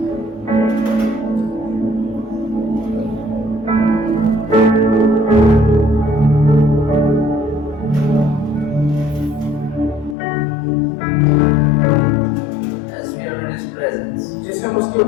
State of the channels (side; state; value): right; drops out; at 10.2 s